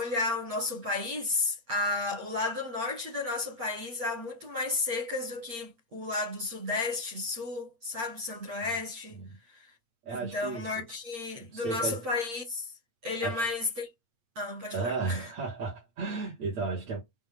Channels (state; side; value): late; left; 8.6 ms